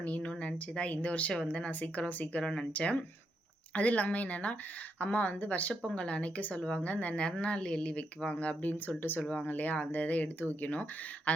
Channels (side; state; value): both; normal; correlation 0.81